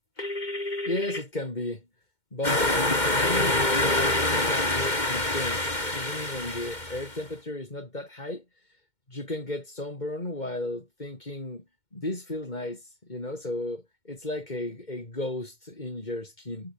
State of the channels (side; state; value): right; late; 2.2 ms